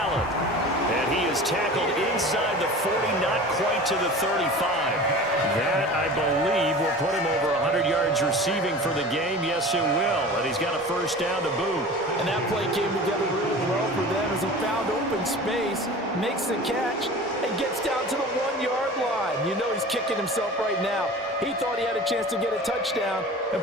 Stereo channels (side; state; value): both; normal; correlation 0.37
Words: And he is tackled inside the 40, not quite to the 35. That, I believe, will put him over 100 yards receiving for the game. Yes, it will. And he's got a 1st down to boot. And that play came together really well for them as he found open space, makes the catch, and gets down to the 1-yard line. You know he's kicking himself right now. He thought he had a chance to get a touchdown and